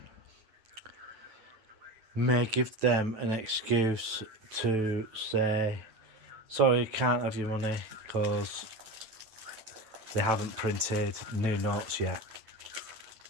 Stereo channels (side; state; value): left; late; 9.2 ms